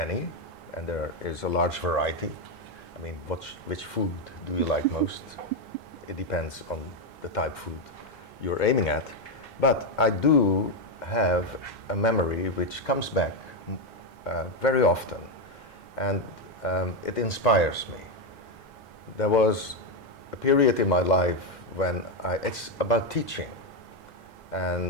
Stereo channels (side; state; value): both; normal; correlation 0.05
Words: and there is a large variety. I mean, which food do you like most? It depends on the type of food you're aiming at. But I do have a memory which comes back very often, and it inspires me. There was a period in my life when it's about teaching,